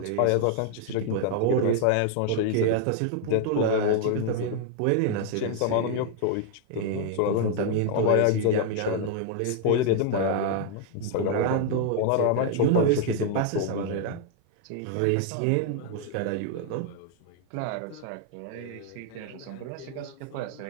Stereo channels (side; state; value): both; different; correlation 0.00